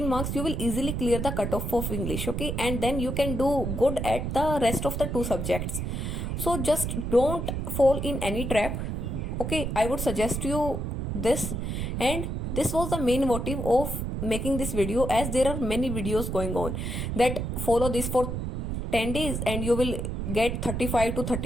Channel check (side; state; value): right; noise; rumble, 3 dB below the sound